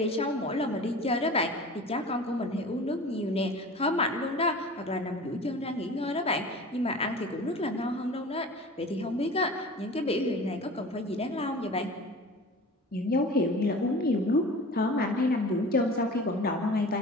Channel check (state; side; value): normal; both; correlation 0.38